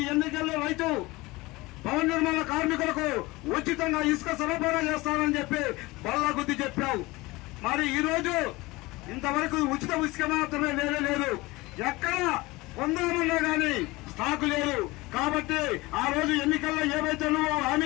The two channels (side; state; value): right; quieter; 21.6 dB